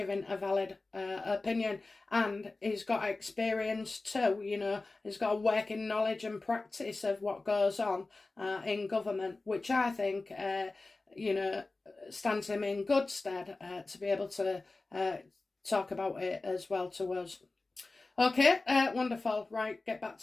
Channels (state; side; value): quieter; right; 3.4 dB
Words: a valid opinion. And he's got experience too, you know. He's got a working knowledge and practice of what goes on in government, which I think, you know, stands him in good stead to be able to talk about it as well to us. Okay, wonderful. Right, get back